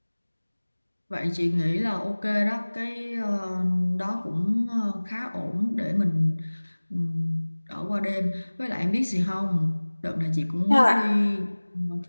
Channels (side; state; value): both; inverted; correlation -1.00